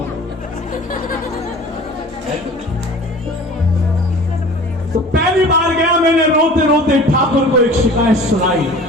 तो पहली बार गया, मैंने रोते रोते ठाकुर को एक शिकायत सुनाई।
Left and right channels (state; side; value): normal; both; correlation 0.43